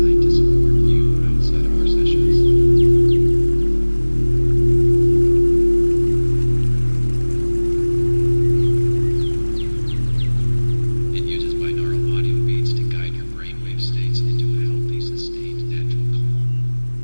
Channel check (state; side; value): inverted; both; correlation -1.00